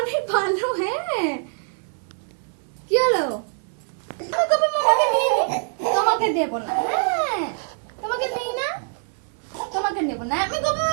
অনেক ভালো। হ্যাঁ, কি হলো? আমি গোপা মামাকে নিয়ে নি, তোমাকে দেবো না। হ্যাঁ, তোমাকে নেই না, তোমাকে নেবো না। আমি গোপা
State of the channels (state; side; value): silent; left; 61 dB below the other